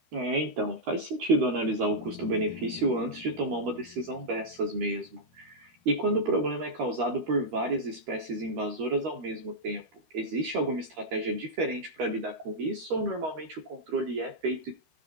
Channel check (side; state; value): left; late; 13 ms